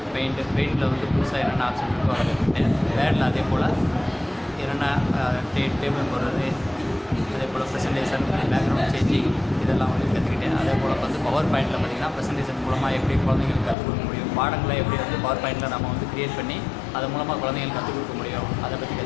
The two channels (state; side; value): drops out; right; at 13.8 s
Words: பெயிண்டில் வந்து புதுசாக என்னென்ன ஆப்ஷன் இருக்கோ அதை கற்றுக்கிட்டேன். வேர்டில் அதே போல் என்னென்ன டேபிள் போடுறது, அதே போல் ப்ரெசன்டேஷன், பேக்ரவுண்ட் சேஞ்சிங் இதெல்லாம் வந்து கற்றுக்கிட்டேன். அதே போல் வந்து பவர் பாயிண்டில் பார்த்திங்கன்னா ப்ரெசன்டேஷன் மூலமாக எப்படி குழந்தைங்களுக்கு கற்றுக் கொடுக்க முடியும், பாடங்களை எப்படி வந்து பவர் பாயிண்டில் நம்ம வந்து க்ரியேட் பண்ணி அது மூலமாக குழந்தைங்களுக்கு கற்றுக் கொடுக்க முடியும், அதை பற்றி